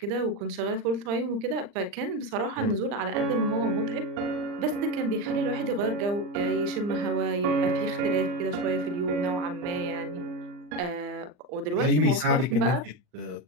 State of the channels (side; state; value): left; late; 39 ms